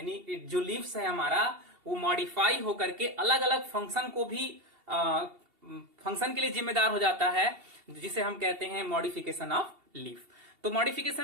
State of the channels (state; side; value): late; left; 2.7 ms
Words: जो लीव्स है हमारा, वो मॉडिफाई होकर के अलग अलग फंक्शन को भी फंक्शन के लिए जिम्मेदार हो जाता है, जिसे हम कहते हैं मॉडिफिकेशन ऑफ लीफ। तो